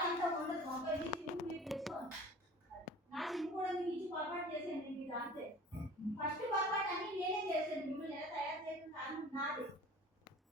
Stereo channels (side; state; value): both; normal; correlation 0.43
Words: అంతా ఉండదు ఒక సిమ్ మీరు తెచ్చుకోండి నా సిమ్ కూడా మీరు ఇచ్చి పొరపాటు చేసేయండి మీరు అంతే ఫస్ట్ పొరపాటు అన్ని నేనే చేశాను మిమ్మల్ని ఎలా తయారు చేసిన కారణం నాది